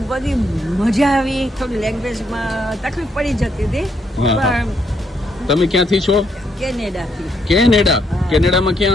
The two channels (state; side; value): normal; both; correlation 0.74